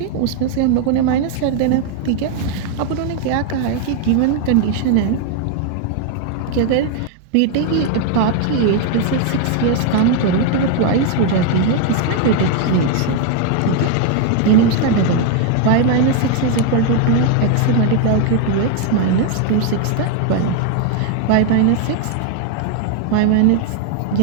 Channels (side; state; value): both; different; correlation 0.00